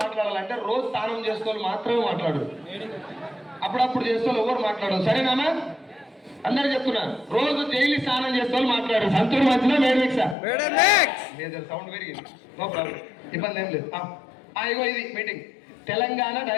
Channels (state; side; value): drops out; right; at 10.4 s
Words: మాట్లాడాలంటే రోజు స్నానం చేసుకోవాలి మాత్రమే మాట్లాడు, అప్పుడప్పుడు చేసుకోవాలి ఎవరు మాట్లాడు. సరేనా? అందరు చెప్తున్నారు, రోజు డైలీ స్నానం చేసుకోవాలి మాట్లాడు. సంతూర్ మంచిదా, మేడ్ మిక్సా? లేదు, సౌండ్ పెరిగింది, నో ప్రాబ్లం, ఇబ్బంది ఏం లేదు. ఇగో ఇది meeting Telangana